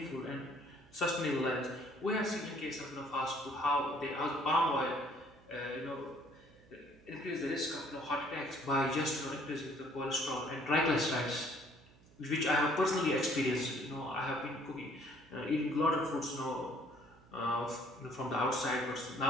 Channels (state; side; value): noise; right; hum, 26 dB below the sound